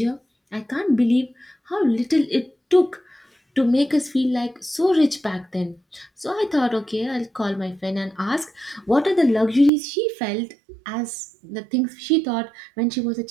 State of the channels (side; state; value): left; drops out; at 9.7 s